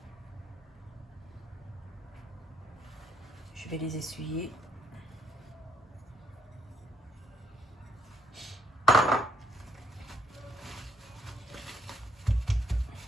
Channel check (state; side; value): normal; both; correlation 0.73